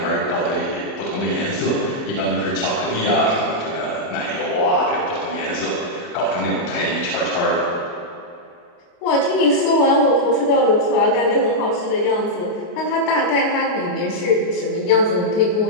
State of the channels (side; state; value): right; late; 29 ms